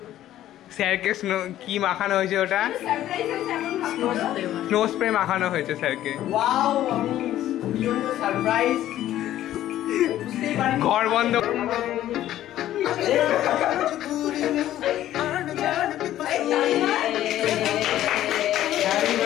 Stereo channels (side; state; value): right; quieter; 13.0 dB